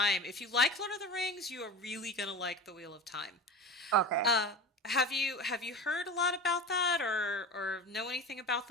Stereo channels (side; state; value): both; normal; correlation 0.31